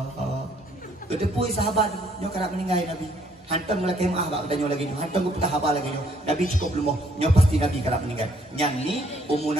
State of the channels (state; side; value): normal; both; correlation 0.66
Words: Kedepui sahabat nyo kerap meninggal Nabi. Hantam lagi maaf bak danyo lagi nyo. Hantam ku haba lagi nyo. Nabi cukup belum nyo pasti Nabi kerap meninggal. Yang ni umur